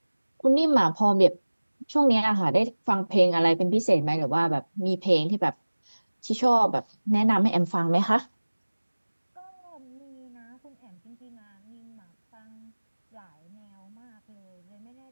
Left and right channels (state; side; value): inverted; both; correlation -1.00